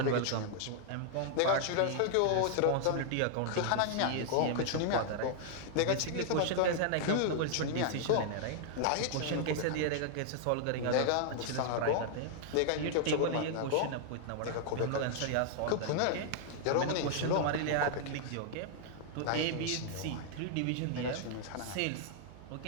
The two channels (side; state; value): both; different; correlation -0.01